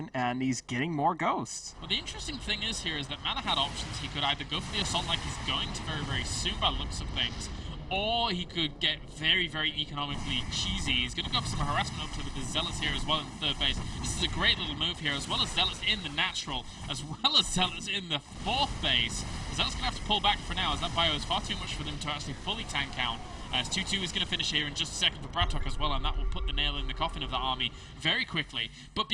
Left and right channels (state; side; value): identical; both; correlation 1.00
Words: and he's getting more ghosts. Well, the interesting thing is here is that Mana had options. He could either go for the assault like he's going to very, very soon by the looks of things, or he could get very, very economically cheesy. He's going to go for some harassment up to the Zealots here as well in the third base. This is a great little move here, as well as Zealots in the natural, as well as Zealots in the fourth base. Zealots going to have to pull back for now, as that bio is far too much for them to actually fully tank out. As 2-2 is going to finish here in just a second for Bratok as well, and that will put the nail in the coffin of the army very quickly. But